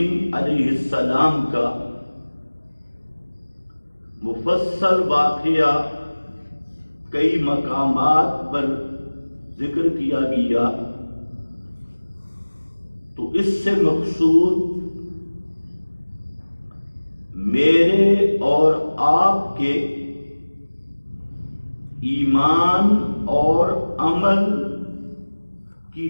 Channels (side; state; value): both; inverted; correlation -1.00